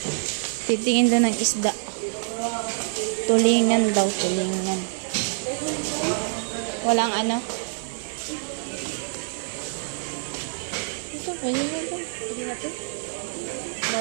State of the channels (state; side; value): silent; left; 61 dB below the other